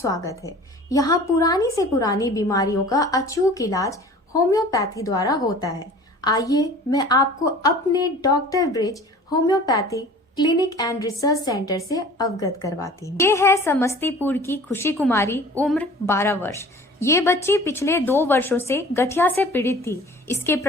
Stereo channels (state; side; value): normal; both; correlation 0.45